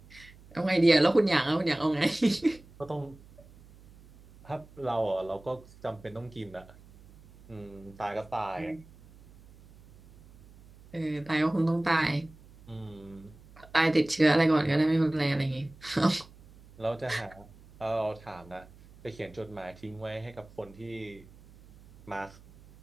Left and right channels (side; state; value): right; noise; hum, 23 dB below the sound